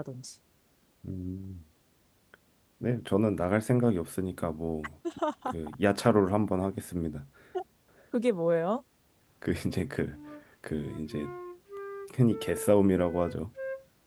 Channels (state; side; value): identical; both; correlation 1.00